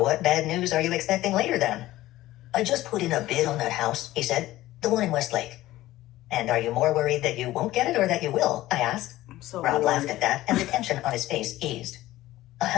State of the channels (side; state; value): right; quieter; 16.0 dB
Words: bad news are you expecting later, then? I just put in a bid on that house, he said. The one in Westlake. And are you more worried that you won't get it or that you will? I asked. Rob laughed at that, and the tension on his face eased. I